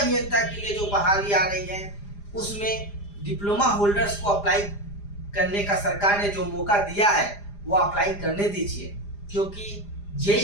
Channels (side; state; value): right; late; 4.9 ms